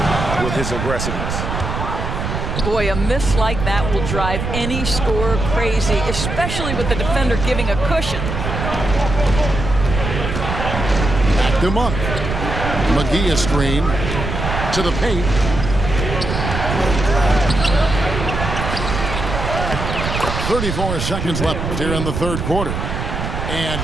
with his aggressiveness. Boy, a miss like that will drive any scorer crazy, especially with the defender giving a cushion. Back to Monk. McGee a screen. To the paint. 34 seconds left here in the third quarter. And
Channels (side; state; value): right; noise; rumble, 4 dB below the sound